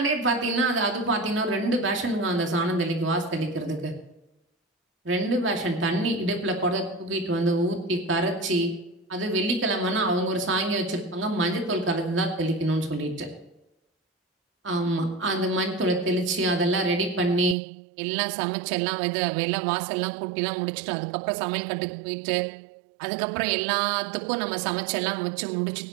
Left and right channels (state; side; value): drops out; left; at 17.6 s